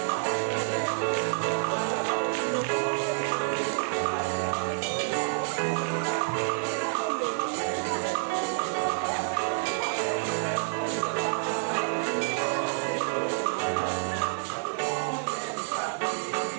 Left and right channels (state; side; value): silent; left; digital silence